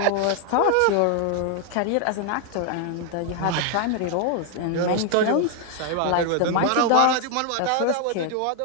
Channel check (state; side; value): different; both; correlation 0.00